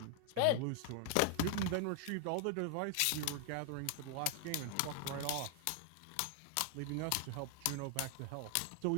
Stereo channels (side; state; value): both; different; correlation 0.00